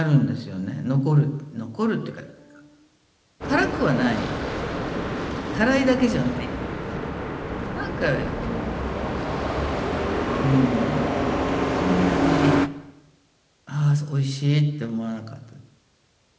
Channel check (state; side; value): identical; both; correlation 1.00